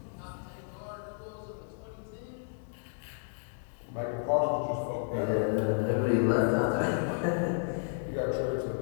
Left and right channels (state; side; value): silent; right; digital silence